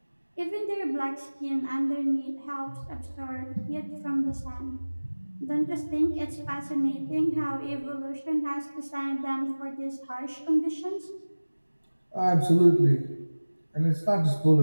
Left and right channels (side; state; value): both; inverted; correlation -1.00